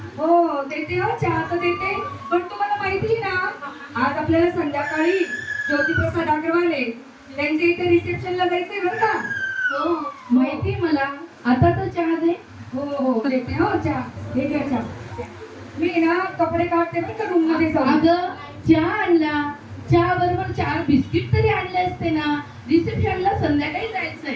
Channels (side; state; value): both; identical; correlation 1.00